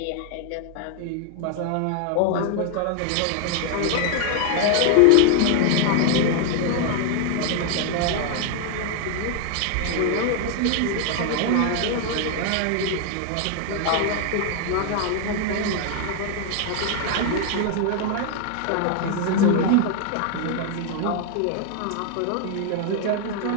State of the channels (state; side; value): different; both; correlation 0.00